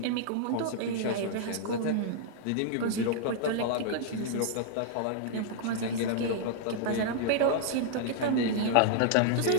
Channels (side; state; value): both; different; correlation -0.01